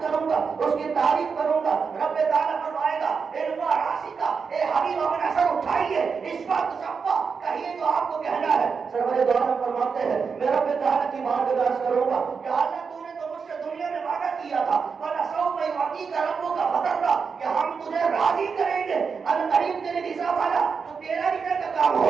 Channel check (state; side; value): quieter; left; 5.6 dB